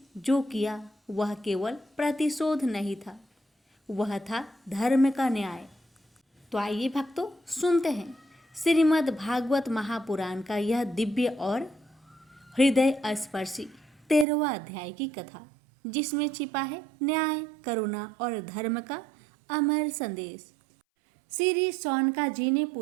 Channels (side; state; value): left; drops out; at 14.2 s